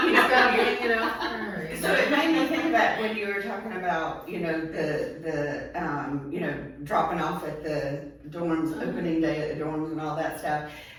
you know, you know. so it made me think about when you were talking about, you know, the you know, dropping off at the dorms, opening day at the dorms and all that stuff.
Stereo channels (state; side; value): identical; both; correlation 1.00